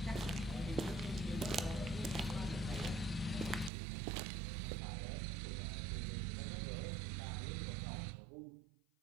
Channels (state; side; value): drops out; left; at 3.7 s